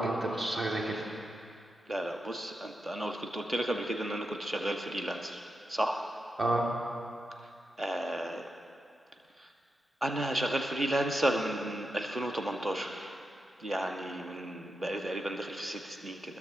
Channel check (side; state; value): both; normal; correlation 0.87